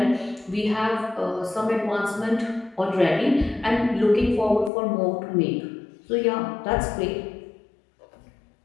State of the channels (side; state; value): right; drops out; at 4.7 s